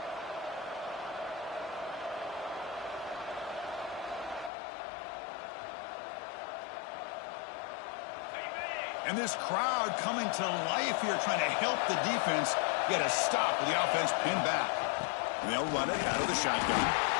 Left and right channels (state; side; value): drops out; right; at 4.5 s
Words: And this crowd coming to life here, trying to help the defense get a stop with the offense pinned back. And they'll run it out of the shotgun.